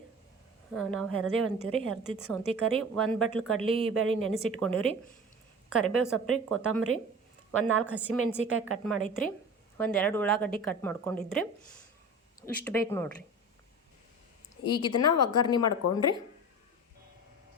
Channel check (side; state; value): both; normal; correlation 0.35